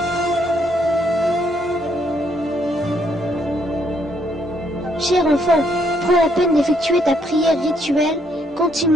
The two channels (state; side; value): normal; both; correlation 0.72